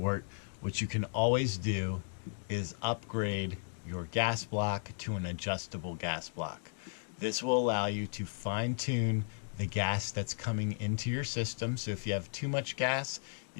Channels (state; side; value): silent; right; digital silence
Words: what you can always do is upgrade your gas block to an adjustable gas block. This will allow you to fine-tune the gas that's coming into your system. So if you have too much gas,